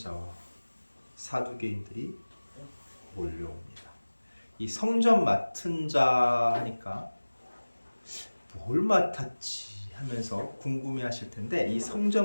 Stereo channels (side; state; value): both; inverted; correlation -1.00